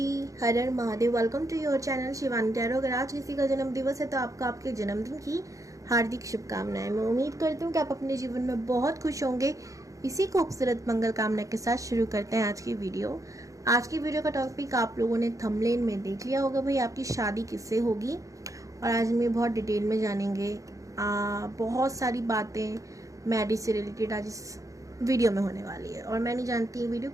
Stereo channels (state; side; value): late; left; 0.16 ms